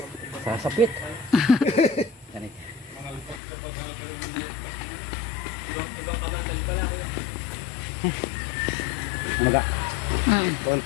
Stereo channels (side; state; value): right; drops out; at 3.4 s